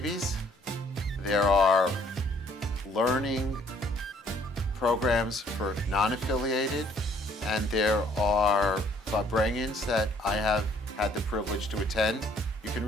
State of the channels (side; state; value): both; normal; correlation 0.62